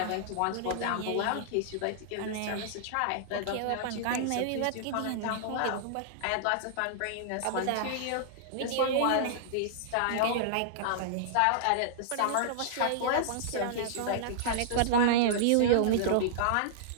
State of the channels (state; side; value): different; both; correlation -0.01